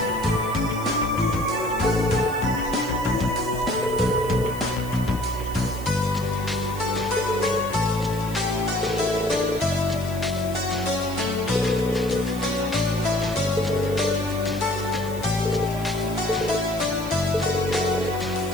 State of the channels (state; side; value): noise; left; hiss, 17 dB below the sound